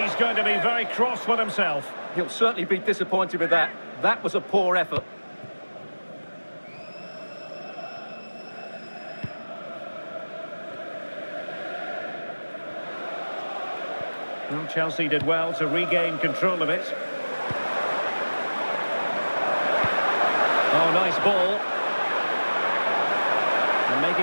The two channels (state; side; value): inverted; both; correlation -1.00